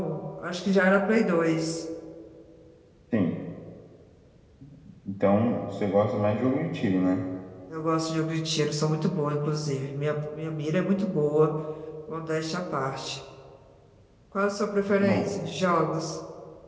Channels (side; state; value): both; identical; correlation 1.00